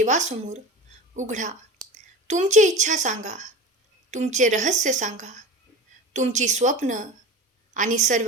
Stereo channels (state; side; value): normal; both; correlation 0.32